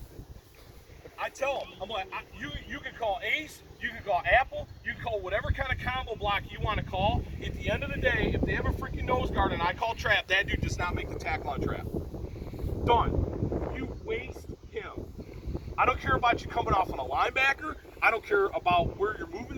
I tell him, I'm like, you can call ace, you can call apple, you can call whatever kind of combo block you want to call. At the end of the day, if they have a freaking nose guard and I call trap, that dude does not make the tackle on trap. Done. You waste him. I don't care about you coming off on a linebacker. I don't care about where you're moving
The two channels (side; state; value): both; identical; correlation 1.00